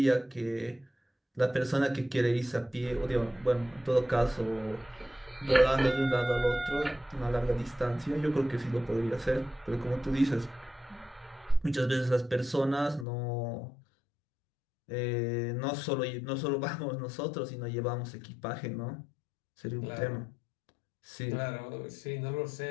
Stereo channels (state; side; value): drops out; right; at 13.1 s